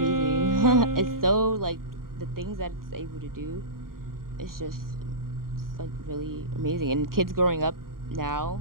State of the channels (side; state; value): left; late; 0.91 ms